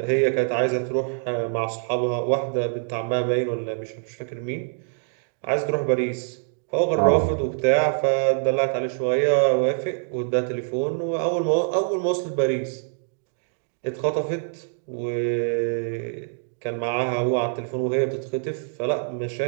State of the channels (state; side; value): silent; left; digital silence